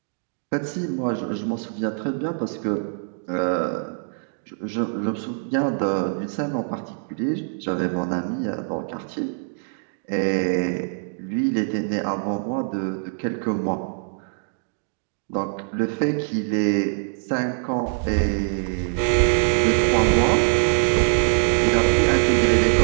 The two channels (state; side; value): silent; left; digital silence